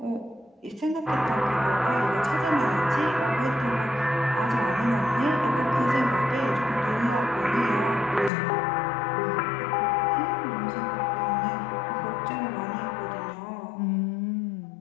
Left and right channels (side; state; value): right; drops out; at 8.3 s